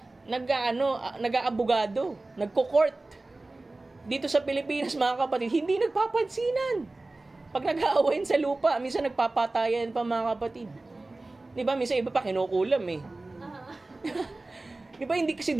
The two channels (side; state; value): left; quieter; 3.0 dB